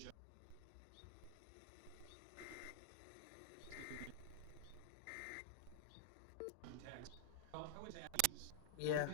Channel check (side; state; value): both; different; correlation -0.02